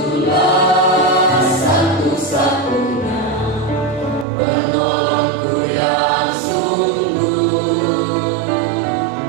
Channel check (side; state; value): left; drops out; at 4.2 s